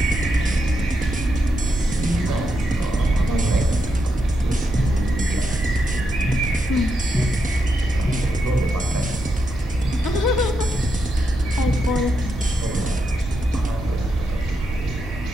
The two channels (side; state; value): both; normal; correlation 0.83